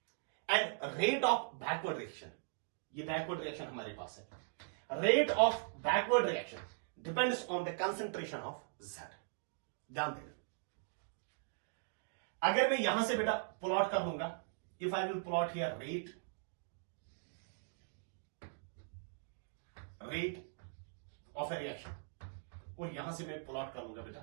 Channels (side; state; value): left; silent; digital silence